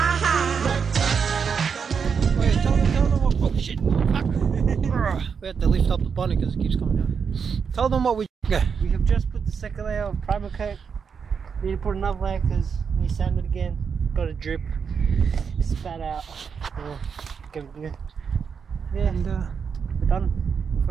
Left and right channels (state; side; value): quieter; left; 6.3 dB